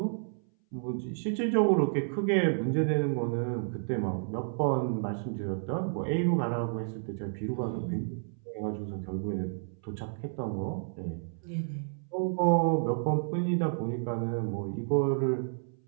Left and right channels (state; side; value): silent; left; 57 dB below the other